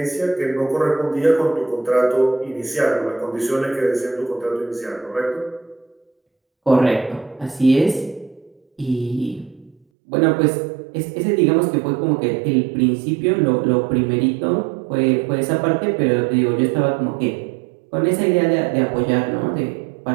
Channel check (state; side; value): drops out; left; at 9.8 s